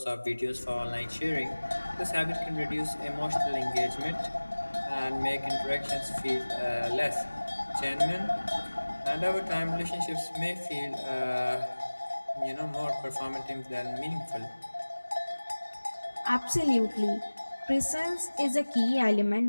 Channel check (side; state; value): both; inverted; correlation -1.00